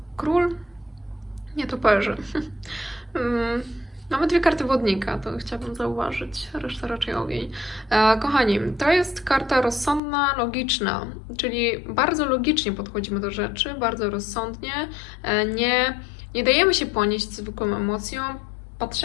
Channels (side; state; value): right; drops out; at 10.0 s